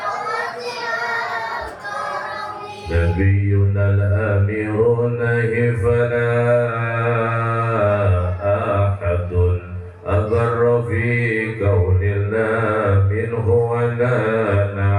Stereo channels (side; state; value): both; identical; correlation 1.00